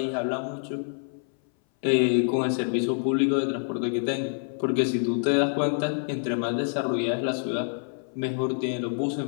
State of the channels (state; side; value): silent; right; 59 dB below the other